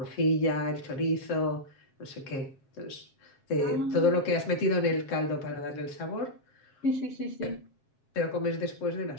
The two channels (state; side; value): late; right; 7.4 ms